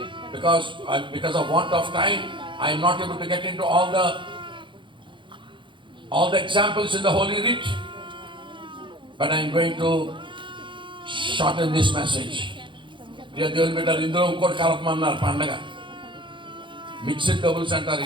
because of want of time I am not able to get into all the examples in the Holy Writ, but I am going to shorten this message. దేవుని బిడ్డలు, ఇందులో ఇంకోటి కలపమన్నారు. పండగ mixed doubles అంటారు.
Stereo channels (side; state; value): left; late; 0.24 ms